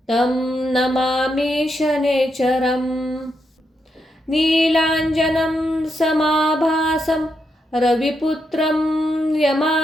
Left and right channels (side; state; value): both; normal; correlation 0.82